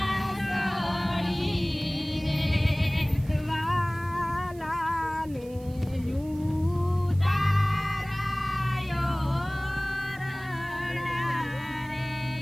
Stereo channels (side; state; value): right; noise; hiss, 24 dB below the sound